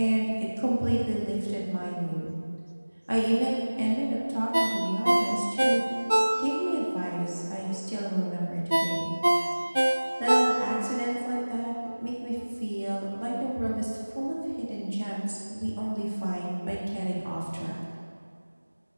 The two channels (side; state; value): both; inverted; correlation -1.00